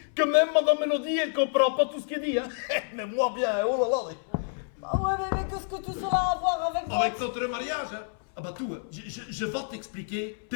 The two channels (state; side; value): silent; right; 59 dB below the other